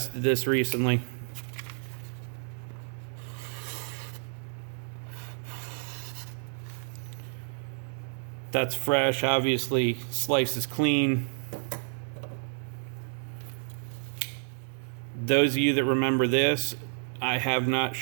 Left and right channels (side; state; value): left; silent; digital silence